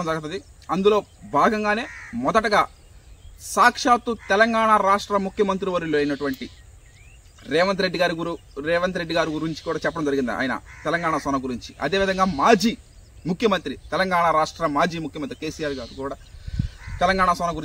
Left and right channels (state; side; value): identical; both; correlation 1.00